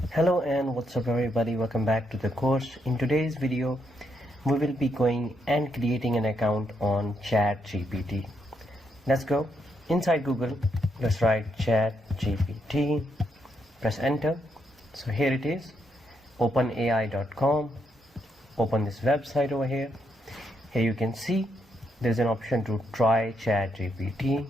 Hello and what's up everybody, welcome back to the course. In today's video we will be going and creating an account on ChatGPT. Let's go inside Google. Let's write ChatGPT, press enter. So here it is, openai.com. Open this website over here. Here you can see there's an option to try ChatGPT.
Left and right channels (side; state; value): both; normal; correlation 0.79